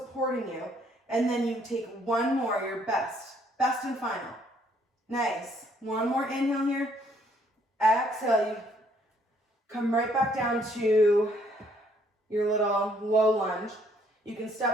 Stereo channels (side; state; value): both; normal; correlation 0.66